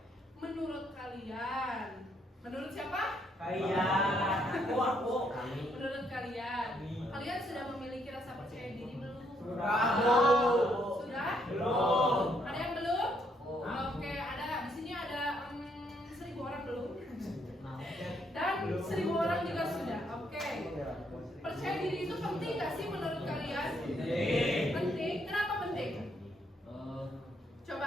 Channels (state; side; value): normal; both; correlation 0.72